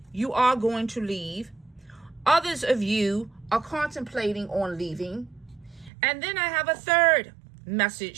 you are going to leave. Others of you are contemplating on leaving. And then I have a third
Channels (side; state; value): left; drops out; at 5.9 s